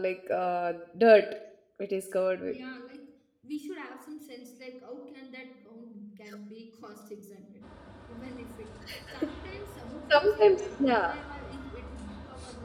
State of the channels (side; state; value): both; identical; correlation 1.00